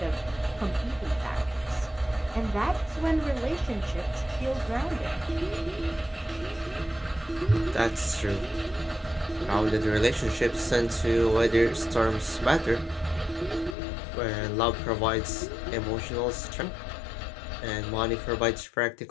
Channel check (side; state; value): right; drops out; at 13.8 s